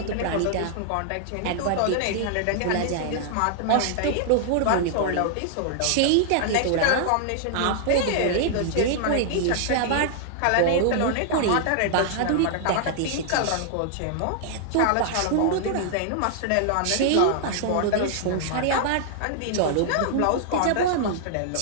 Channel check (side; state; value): both; different; correlation -0.01